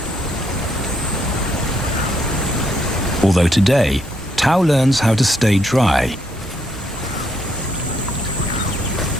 Although today, Tau learns how to stay dry.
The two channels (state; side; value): normal; both; correlation 0.74